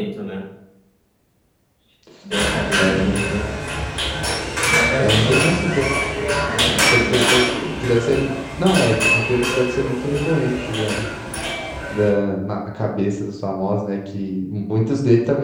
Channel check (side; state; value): both; identical; correlation 1.00